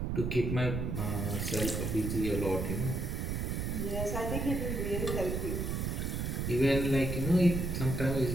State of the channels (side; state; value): right; noise; rumble, 1 dB below the sound